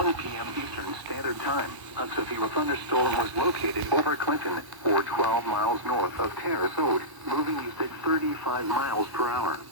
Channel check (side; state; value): left; late; 1.1 ms